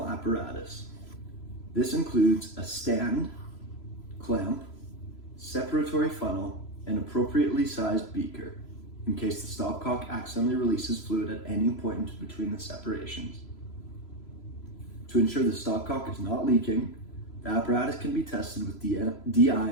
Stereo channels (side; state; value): right; late; 3.0 ms